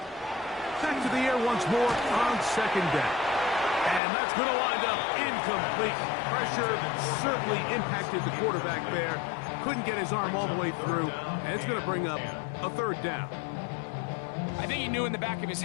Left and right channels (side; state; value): right; drops out; at 4.0 s